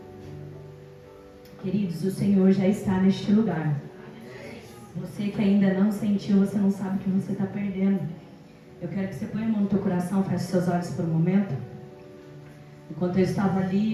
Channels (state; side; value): identical; both; correlation 1.00